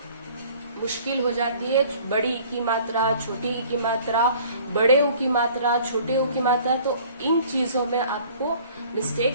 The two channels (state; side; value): inverted; both; correlation -0.51